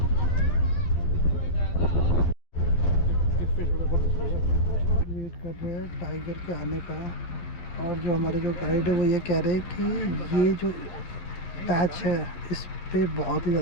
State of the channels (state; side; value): late; right; 12 ms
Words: वेट कर रहे हैं टाइगर के आने का, और जो हमारे जो गाइड है वो ये कह रहे हैं कि ये जो पैच है इस पे बहुत ही